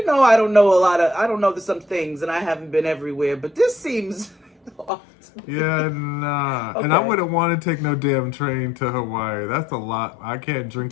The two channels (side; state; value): right; drops out; at 4.9 s